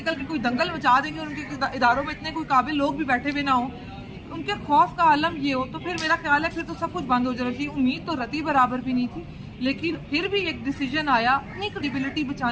کے کوئی دنگل مچا دیں گے اور ان کے اداروں میں اتنے کوئی قابل لوگ بھی بیٹھے ہوئے نہ ہوں, ان کے خوف کا عالم یہ ہو تو پھر میرا خیال ہے پھر تو سب کچھ بند ہو جانا چاہیے. امید تو رتی برابر بھی نہیں تھی لیکن پھر بھی ایک ڈیسیجن آیا, اپنی کریڈیبلٹی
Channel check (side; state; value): both; identical; correlation 1.00